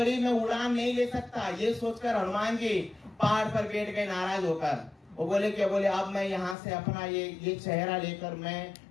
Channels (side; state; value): right; drops out; at 6.6 s